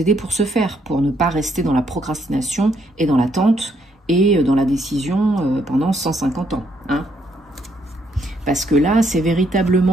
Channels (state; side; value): normal; both; correlation 0.73